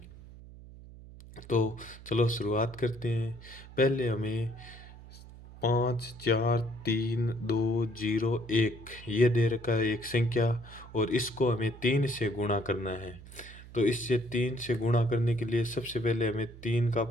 तो चलो शुरुआत करते हैं। पहले हमें 5 4 3 2 0 1 ये दे रखा है एक संख्या, और इसको हमें 3 से गुणा करना है। तो इससे 3 से गुणा करने के लिए सबसे पहले हमें 3 का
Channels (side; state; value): right; noise; hum, 17 dB below the sound